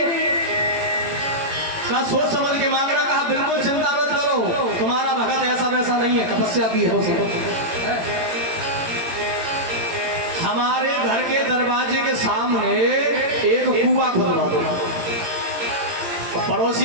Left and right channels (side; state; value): left; late; 18 ms